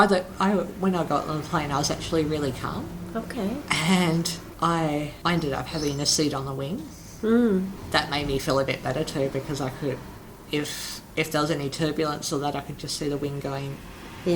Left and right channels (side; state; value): both; identical; correlation 1.00